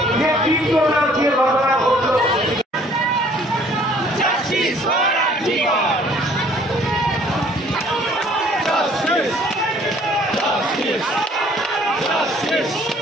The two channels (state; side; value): normal; both; correlation 0.57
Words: যে তীব্রতা দিয়ে ঘটনা ঘটল।